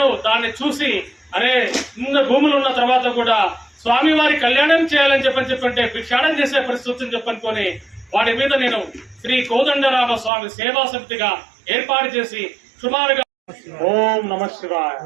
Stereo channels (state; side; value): drops out; left; at 10.3 s